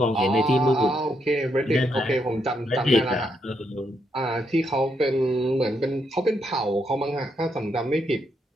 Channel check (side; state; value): both; normal; correlation 0.78